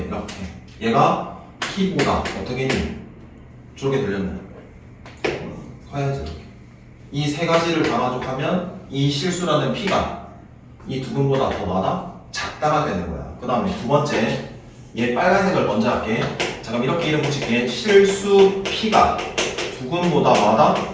얘가 p보다 어떻게 했니? 저렇게 들렸네. 커야지. 이 세 가지를 감아족하면 이 실수라는 p가 이 두근보다 더 많아? 작다가 되는 거야. 그 다음에 두 번째 얘 빨간색을 먼저 할게. 자 그럼 이렇게 이름 붙일게. 실수 p가 두근보다 많아?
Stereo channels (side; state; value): both; identical; correlation 1.00